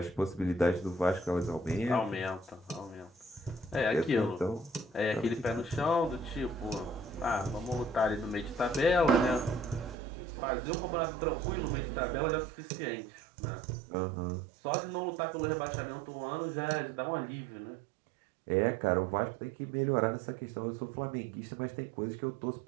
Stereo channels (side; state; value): left; drops out; at 10.0 s